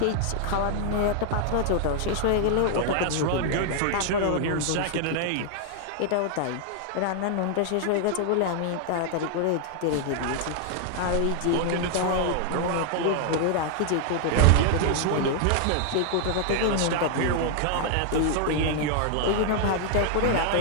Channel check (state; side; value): different; both; correlation 0.00